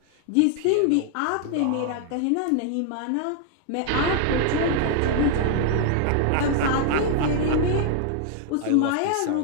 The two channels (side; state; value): both; different; correlation 0.00